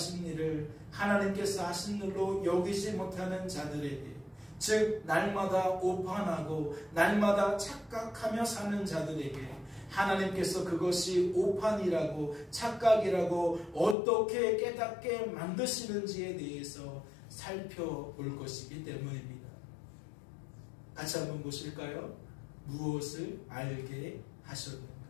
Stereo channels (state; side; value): drops out; right; at 14.0 s